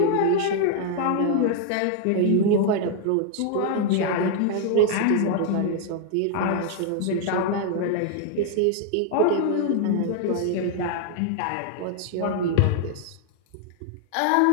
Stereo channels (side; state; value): both; different; correlation 0.00